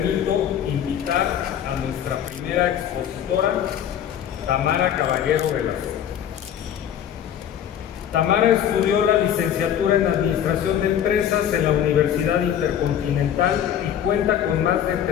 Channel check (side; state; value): right; quieter; 9.8 dB